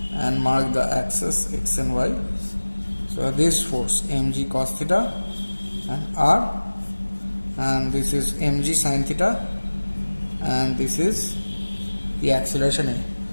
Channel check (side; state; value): both; inverted; correlation -1.00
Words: and mark the axis x and y, so this force mg cos theta and R, and this is mg sin theta, and this is the acceleration